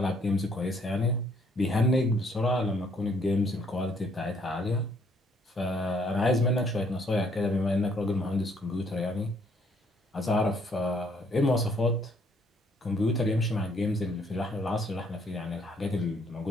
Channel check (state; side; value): normal; both; correlation 0.66